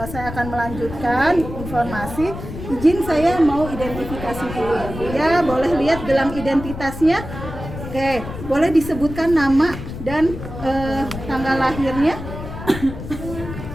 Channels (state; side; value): noise; left; rumble, 9 dB below the sound